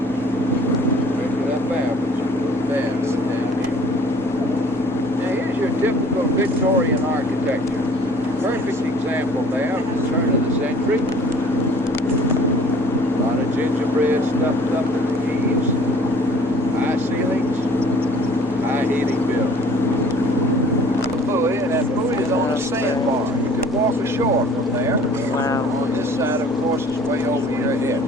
Drink it up there, but you do bad with the damn people. Now, here's your typical Victorian architecture. Perfect example there of the turn of the century. A lot of gingerbread stuffed up in the eaves, high ceilings, high heating bills. Buoy, and that buoy is on a sandbar. You can walk ashore from there. Wow. On this side, of course, is way over your head.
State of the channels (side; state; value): both; normal; correlation 0.52